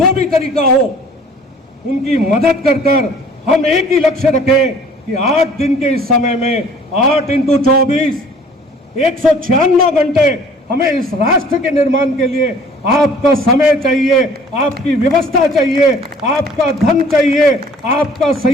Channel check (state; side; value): normal; both; correlation 0.52